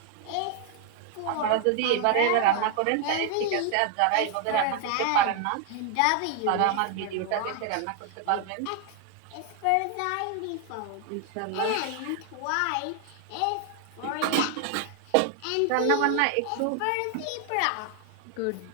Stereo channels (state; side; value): different; both; correlation 0.00